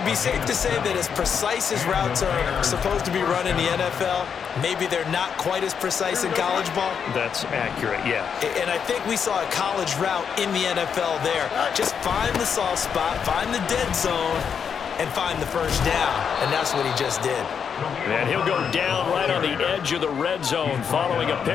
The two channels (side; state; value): right; quieter; 7.1 dB